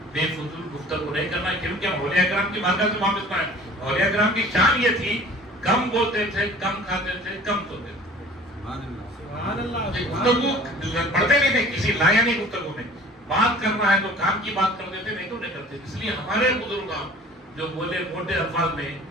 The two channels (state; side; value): normal; both; correlation 0.47